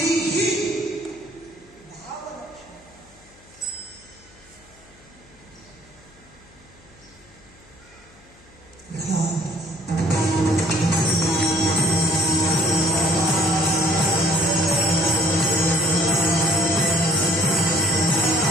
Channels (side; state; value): left; noise; hum, 27 dB below the sound